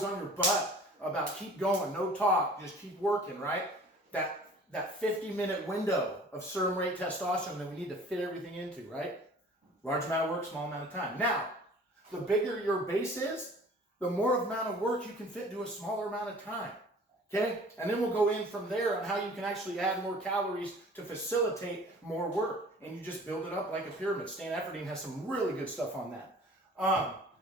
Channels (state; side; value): normal; both; correlation 0.48